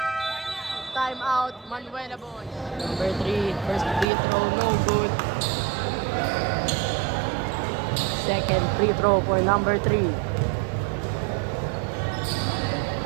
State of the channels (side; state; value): left; drops out; at 4.0 s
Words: Time out, Manuela Boys. Number 3, first free throw, no good. Second free throw for number 3.